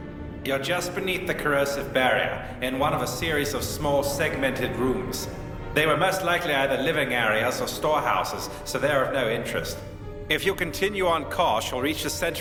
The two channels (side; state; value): both; identical; correlation 1.00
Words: You're just beneath the corrosive barrier, in one of a series of small segmented rooms. They were most likely either living areas or storehouses, so they're of no interest. If you continue on course, you'll reach the